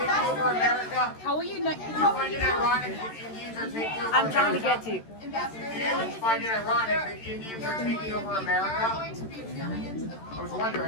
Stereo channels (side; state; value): right; late; 13 ms